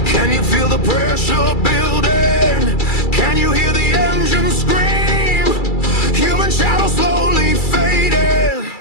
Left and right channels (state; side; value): late; right; 2.3 ms